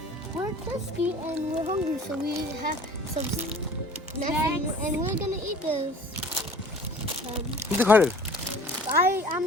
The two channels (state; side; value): normal; both; correlation 0.47